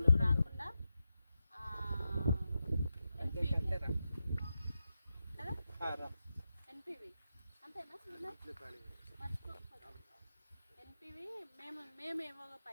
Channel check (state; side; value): inverted; both; correlation -0.89